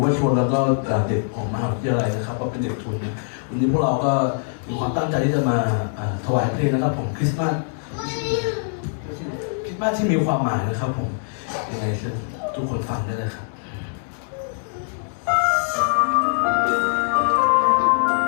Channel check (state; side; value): silent; right; digital silence